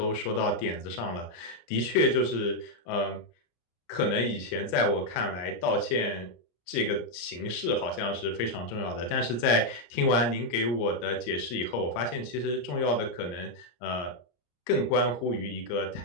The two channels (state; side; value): late; right; 33 ms